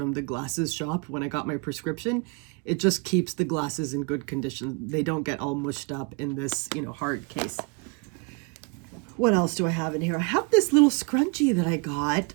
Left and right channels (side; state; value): left; quieter; 32.7 dB